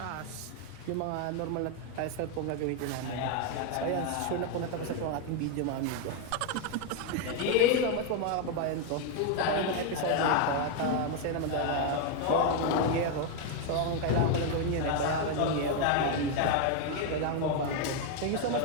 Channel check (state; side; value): different; both; correlation 0.01